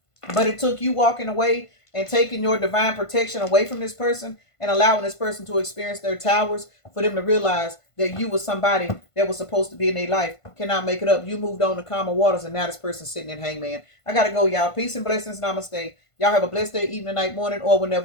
but it took you walking away and taking your divine protection away from this person and allowing this person to experience their towers for them to realize that you was somebody that was supposed to be in their life. Cannot make it up. You moved on to calmer waters and now this person's sitting in hangman. I got to go, y'all. Peace and blessings. Namaste. Y'all have a blessed day, evening, night, morning, or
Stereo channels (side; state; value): right; late; 1.5 ms